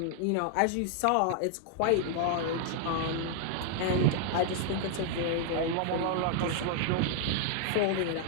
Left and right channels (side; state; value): both; different; correlation 0.00